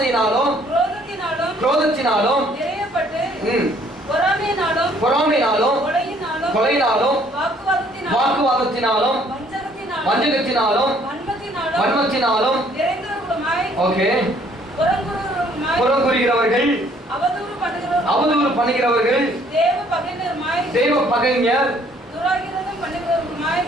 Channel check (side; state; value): both; normal; correlation 0.62